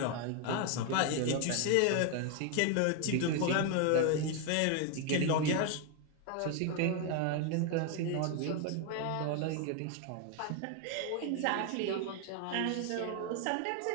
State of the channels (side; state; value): both; different; correlation 0.01